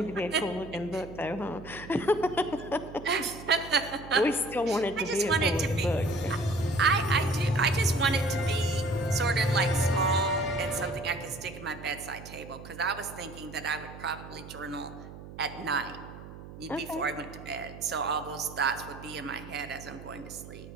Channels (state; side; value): noise; right; hum, 14 dB below the sound